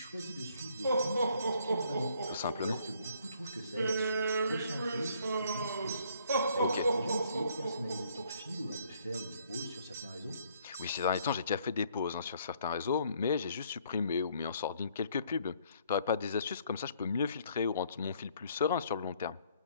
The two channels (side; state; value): both; inverted; correlation -0.65